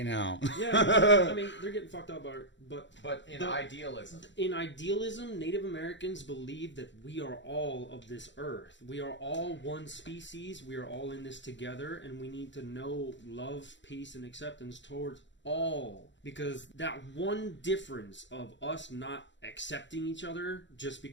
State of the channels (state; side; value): late; right; 0.53 ms